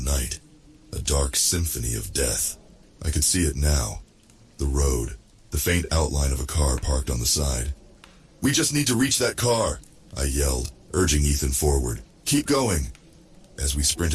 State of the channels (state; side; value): identical; both; correlation 1.00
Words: a dark symphony of death. I could see it now, the road, the faint outline of a car parked on the side. "We just need to reach that car," I yelled, urging Ethan forward. "Keep going." As we